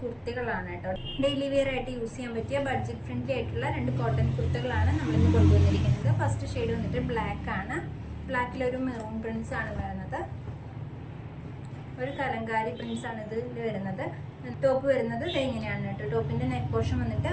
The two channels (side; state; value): both; identical; correlation 1.00